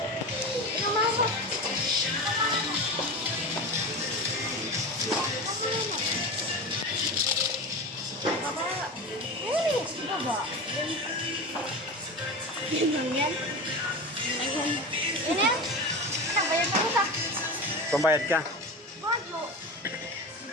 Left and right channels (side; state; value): both; normal; correlation 0.27